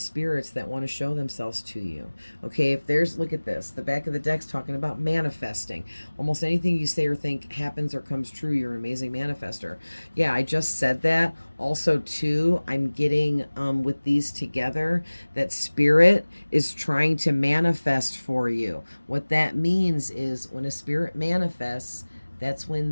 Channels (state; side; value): inverted; both; correlation -1.00